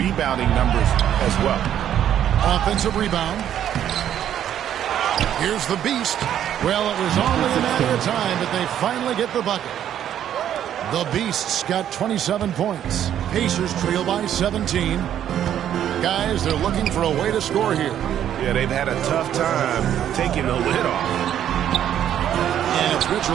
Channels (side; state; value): left; quieter; 10.4 dB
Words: numbers as well. Offensive rebound. Here's the Beast. Well, it was only a matter of time, but they finally get the bucket. The Beasts got 27 points. Pacers trail by 17. Guys, they're looking for a way to score here. Yeah, they've had a tough time taking the lid off. And it's